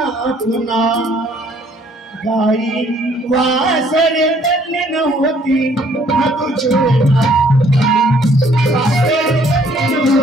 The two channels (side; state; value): both; normal; correlation 0.62